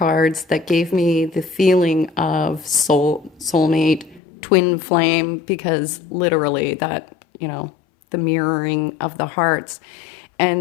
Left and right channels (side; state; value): right; drops out; at 4.2 s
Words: that gave me the feeling of soulmate, twin flame, because literally that, the mirroring of the hearts.